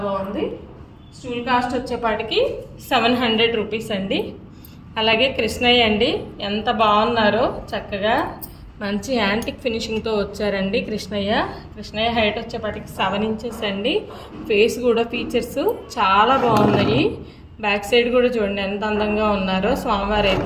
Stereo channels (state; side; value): identical; both; correlation 1.00